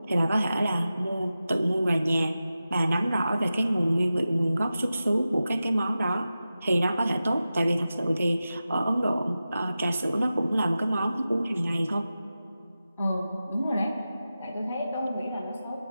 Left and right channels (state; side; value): inverted; both; correlation -0.93